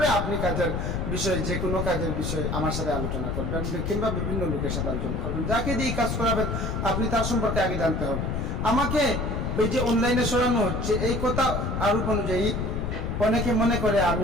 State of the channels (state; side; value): noise; left; rumble, 1 dB below the sound